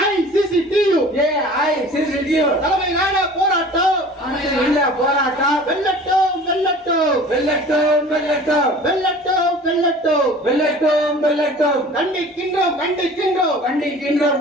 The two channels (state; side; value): normal; both; correlation 0.44